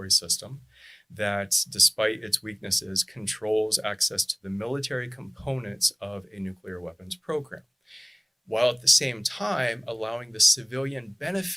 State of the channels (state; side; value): identical; both; correlation 1.00